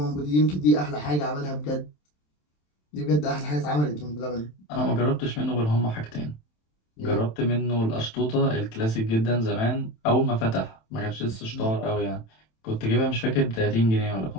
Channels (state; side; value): late; right; 27 ms